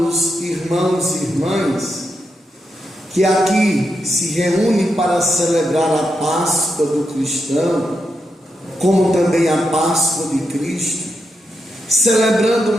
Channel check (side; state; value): both; normal; correlation 0.85